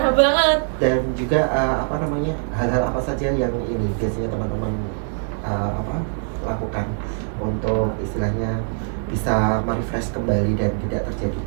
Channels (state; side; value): silent; left; 64 dB below the other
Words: banget. Dan juga hal-hal apa saja yang ini biasanya teman-teman lakukan untuk istilahnya bisa merefresh kembali dan tidak terjadi